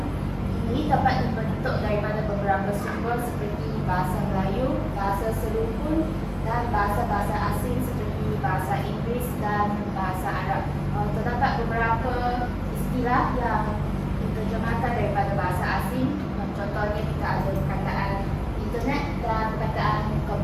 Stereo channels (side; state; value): both; identical; correlation 1.00